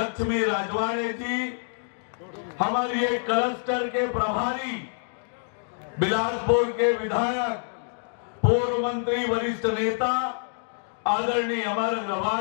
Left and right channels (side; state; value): right; silent; digital silence